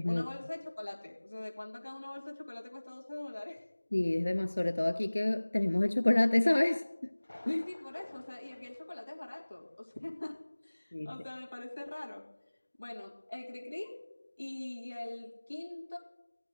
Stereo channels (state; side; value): inverted; both; correlation -1.00